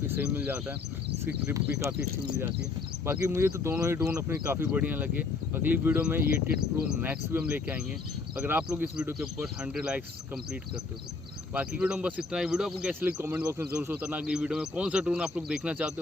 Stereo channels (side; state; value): right; quieter; 4.1 dB